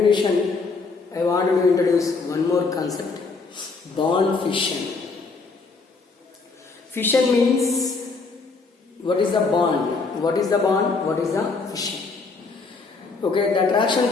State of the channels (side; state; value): right; quieter; 4.2 dB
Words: I wanted to introduce one more concept: bond fission. Fission means what is the bond? What is the bond? What is the fission? Okay, the